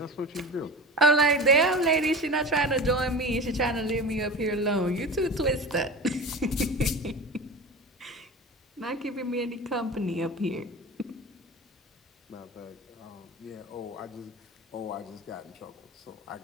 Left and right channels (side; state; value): both; normal; correlation 0.31